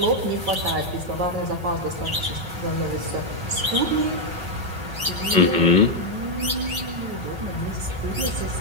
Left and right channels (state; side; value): late; left; 5.4 ms